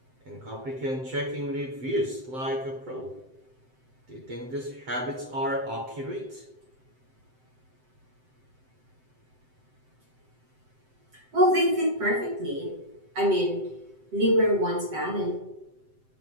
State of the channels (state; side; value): late; left; 7.8 ms